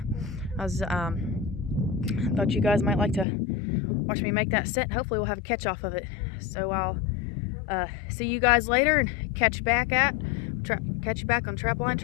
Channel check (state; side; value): drops out; right; at 3.2 s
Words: I was thought you guys might like to watch me make that set, and hopefully we'll have a catch off of it. So I'll see you guys later and catch you back on Trapline